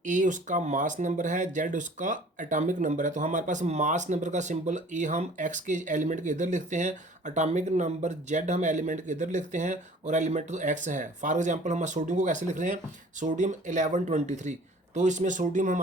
ए उसका मास नंबर है, जेड उसका एटॉमिक नंबर है। तो हमारे पास मास नंबर का सिंबल ए हम एक्स के एलिमेंट के इधर लिखते हैं, एटॉमिक नंबर जेड हम एलिमेंट के इधर लिखते हैं, और एलिमेंट तो एक्स है। फॉर एग्जांपल हम सोडियम को कैसे लिख रहे हैं? सोडियम 1123। तो इसमें सोडियम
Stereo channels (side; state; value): both; normal; correlation 0.50